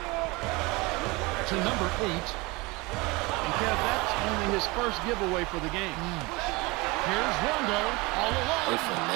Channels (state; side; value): quieter; left; 24.4 dB